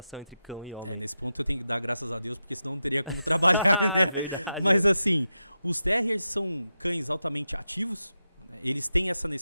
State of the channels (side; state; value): both; inverted; correlation -0.89